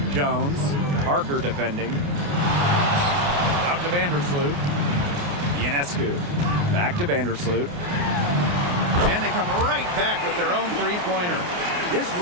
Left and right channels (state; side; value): late; left; 28 ms